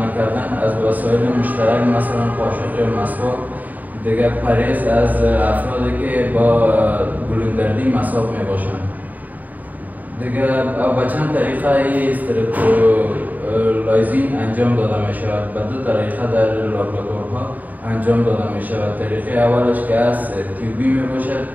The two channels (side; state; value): left; late; 0.080 ms